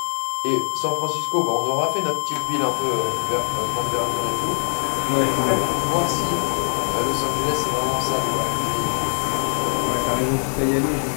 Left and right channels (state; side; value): silent; right; 58 dB below the other